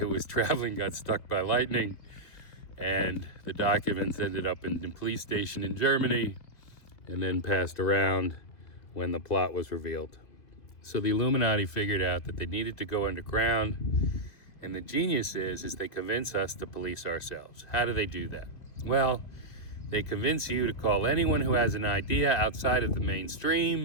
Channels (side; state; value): right; late; 2.4 ms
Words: was traveling got struck by lightning, and the documents ended up in the police station in Germany and then passed around when the plot was revealed. So the Illuminati figured out that they needed to go underground, and the genius is they convince us to police ourselves. How do they do that? Well, they convince you to call anyone who has an idea outside of the